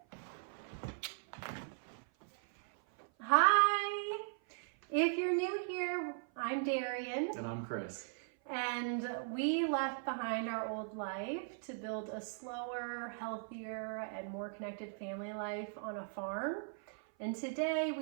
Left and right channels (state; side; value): silent; left; 52 dB below the other